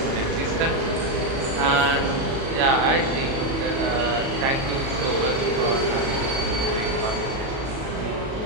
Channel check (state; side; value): late; left; 37 ms